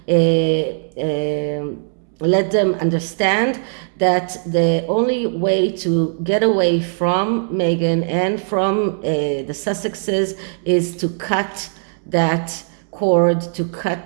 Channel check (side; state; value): left; silent; 66 dB below the other